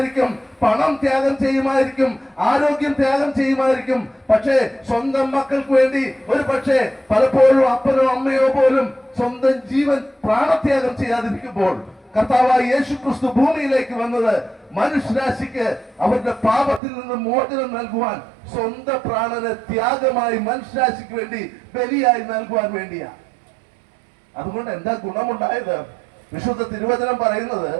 പണം ത്യാഗം ചെയ്യുമായിരിക്കും, ആരോഗ്യം ത്യാഗം ചെയ്യുമായിരിക്കും. പക്ഷേ സ്വന്തം മക്കൾക്ക് വേണ്ടി ഒരു പക്ഷേ പലപ്പോഴും അപ്പനോ അമ്മയോ പോലും സ്വന്തം ജീവൻ പ്രാണത്യാഗം ചെയ്യാതിരിക്കുമ്പോൾ കർത്താവായ യേശു ക്രിസ്തു ഭൂമിയിലേക്ക് വന്നത് മനുഷ്യരാശിക്ക് അവരുടെ പാപത്തിൽ നിന്ന് മോചനം നൽകുവാൻ, സ്വന്തം പ്രാണനെ ത്യാഗമായി മനുഷ്യരാശിക്ക് വേണ്ടി ബലിയായി നൽകുവാൻ വേണ്ടിയാ. അതുകൊണ്ട് എന്താ ഗുണമുണ്ടായത്? വിശുദ്ധ തിരുവചനം പറയുന്നത്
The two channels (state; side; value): drops out; left; at 16.8 s